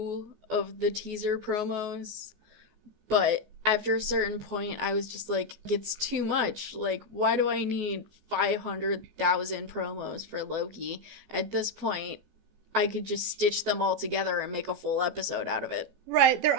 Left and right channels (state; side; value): late; left; 14 ms